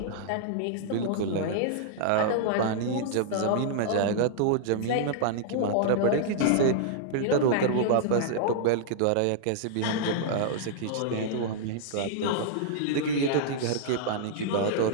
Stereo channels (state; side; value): different; both; correlation -0.01